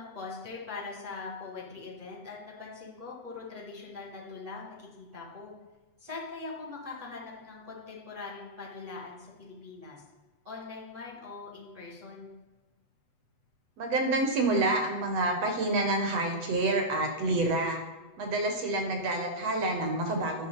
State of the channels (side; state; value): left; late; 8.1 ms